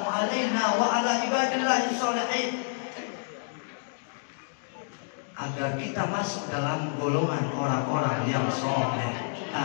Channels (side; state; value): right; silent; digital silence